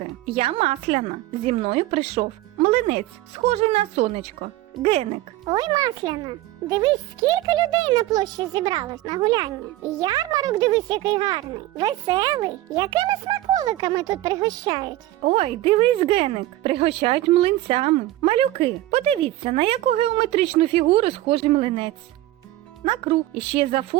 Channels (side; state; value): left; quieter; 15.8 dB